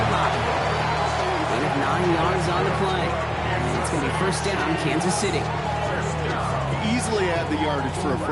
line. Gain of 9 yards on the play. And it's going to be first down, Kansas City. Easily had the yardage for a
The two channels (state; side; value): identical; both; correlation 1.00